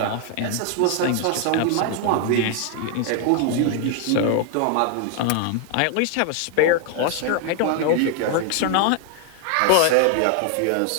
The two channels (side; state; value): both; different; correlation 0.00